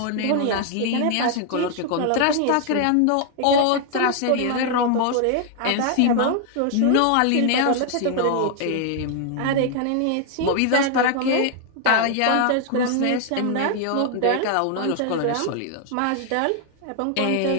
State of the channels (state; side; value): different; both; correlation 0.00